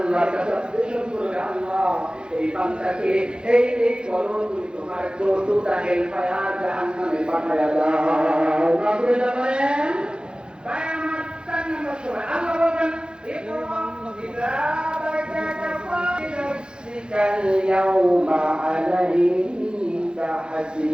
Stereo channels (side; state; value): left; late; 0.049 ms